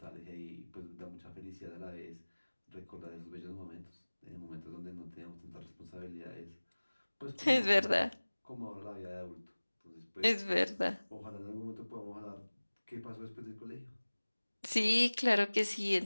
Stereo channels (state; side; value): inverted; both; correlation -1.00